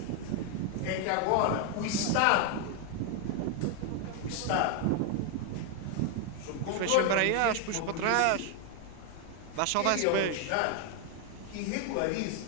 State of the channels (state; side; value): different; both; correlation 0.00